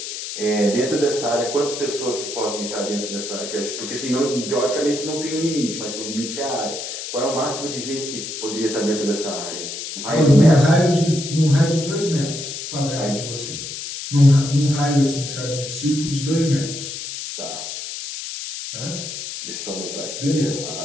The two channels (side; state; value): left; noise; hiss, 7 dB below the sound